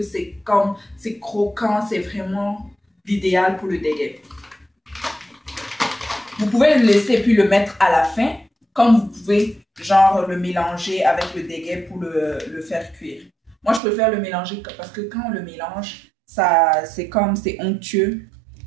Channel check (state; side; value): drops out; left; at 13.8 s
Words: c'est croquant, c'est vraiment l'idéal pour le dégué. Vous pouvez le laisser puis le mettre à la fin, comme vous pouvez genre le mélanger avec le dégué pour le faire cuire. Moi, je préfère le mélanger parce que quand on le mélange, c'est onctueux,